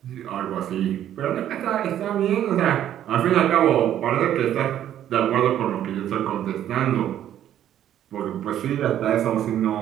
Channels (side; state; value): left; quieter; 11.1 dB